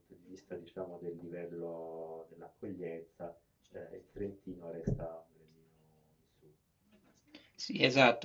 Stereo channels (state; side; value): identical; both; correlation 1.00